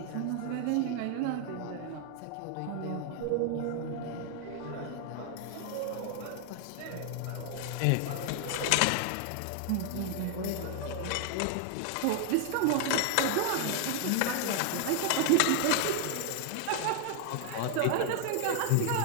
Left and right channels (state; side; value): different; both; correlation 0.00